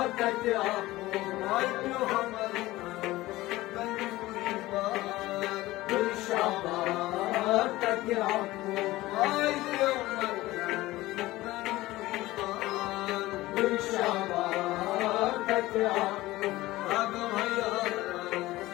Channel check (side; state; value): right; quieter; 17.9 dB